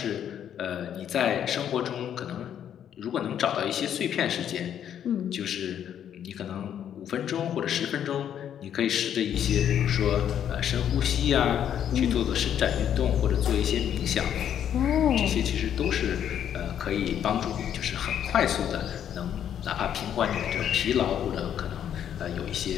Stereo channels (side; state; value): right; quieter; 9.6 dB